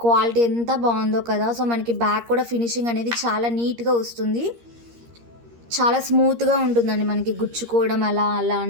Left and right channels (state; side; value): late; left; 13 ms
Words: క్వాలిటీ ఎంత బాగుందో కదా. సో మనకి బ్యాక్ కూడా ఫినిషింగ్ అనేది చాలా నీట్గా వస్తుంది. చాలా స్మూత్గా ఉంటుందండి. మనకి గుచ్చుకోవడం అలా